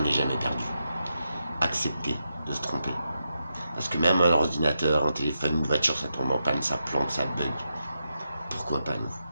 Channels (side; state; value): both; inverted; correlation -0.86